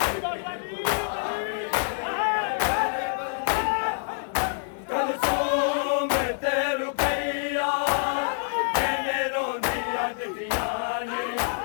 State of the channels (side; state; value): right; silent; digital silence